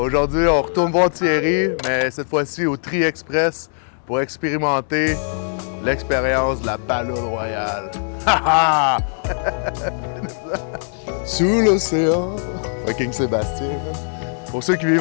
on retourne voir Thierry, mais cette fois-ci au Tri Express pour expérimenter l'expérience de la Palourde Royale. Ha ha! Sous l'océan. Fucking Sébastien. Pour ceux qui vivent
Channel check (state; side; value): silent; right; 65 dB below the other